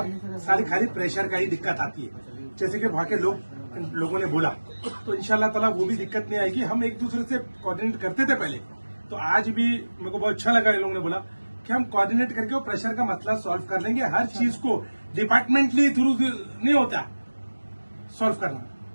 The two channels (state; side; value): inverted; both; correlation -1.00